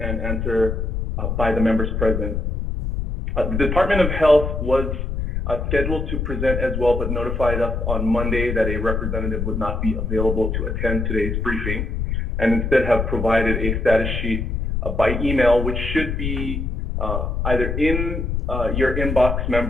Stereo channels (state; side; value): noise; left; rumble, 2 dB below the sound